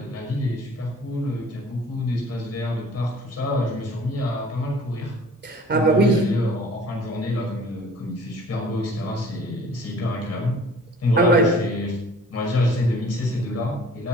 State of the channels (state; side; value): normal; both; correlation 0.49